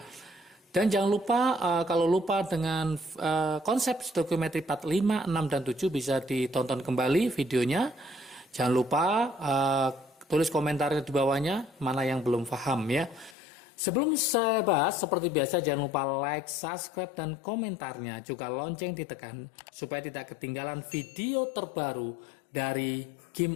Dan jangan lupa kalau lupa dengan konsep stoikiometri part 5, 6, dan 7 bisa ditonton kembali videonya. Jangan lupa tulis komentarnya di bawahnya mana yang belum paham ya. Sebelum saya bahas, seperti biasa jangan lupa like, subscribe, dan komentarnya. Juga lonceng ditekan supaya tidak ketinggalan video terbaru dari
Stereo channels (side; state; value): right; drops out; at 13.4 s